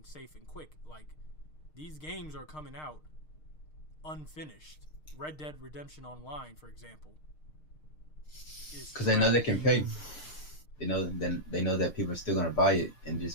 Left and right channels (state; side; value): late; right; 6.5 ms